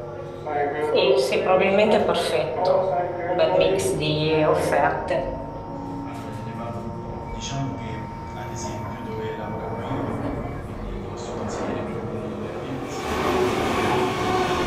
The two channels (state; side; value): identical; both; correlation 1.00